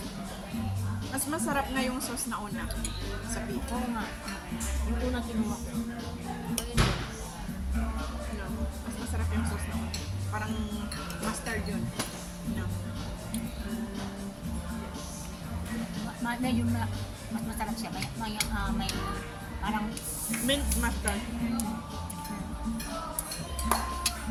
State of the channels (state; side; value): identical; both; correlation 1.00